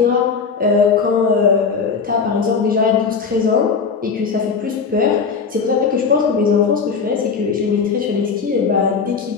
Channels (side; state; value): right; quieter; 5.5 dB